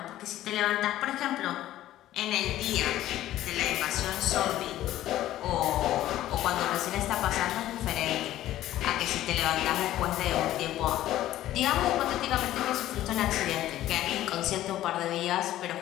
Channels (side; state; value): right; quieter; 13.8 dB